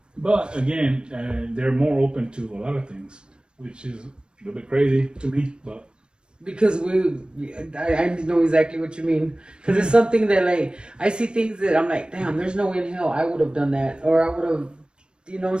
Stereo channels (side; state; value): left; late; 0.050 ms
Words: But again, they're more open to a lot of things, which is a little bit crazy to me. But Because I know exactly what you mean. Because it's something that, like, I see things that I'm like, damn, there's no way in hell I would have done that, or I would have, you know what I'm